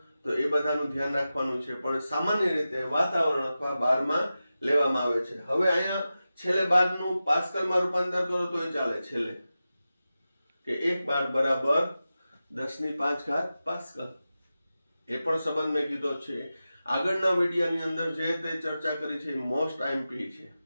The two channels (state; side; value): inverted; both; correlation -0.93